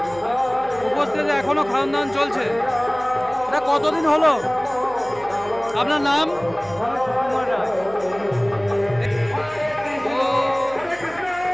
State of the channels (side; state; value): right; noise; hum, 21 dB below the sound